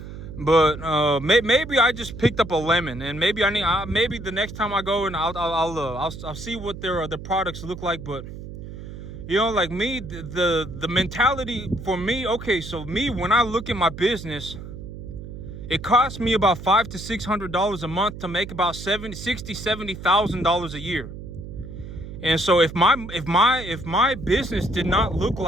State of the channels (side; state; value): right; noise; hum, 11 dB below the sound